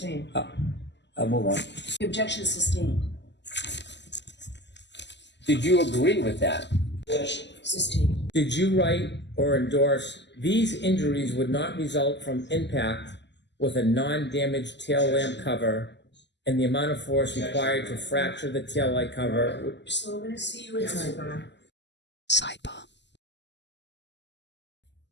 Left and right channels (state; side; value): late; right; 0.51 ms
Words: I'll move on. The objection sustained. Did you agree with that? Sustained. Did you write or endorse these injuries would not result from impact with a non-damaged tail lamp cover and the amount of force required to fracture the tail light cover? So I'm going to see you in sidebar. Sidebar.